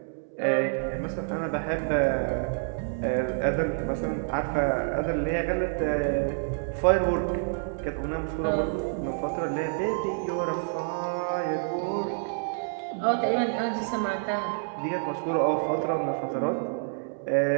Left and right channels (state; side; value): silent; left; 59 dB below the other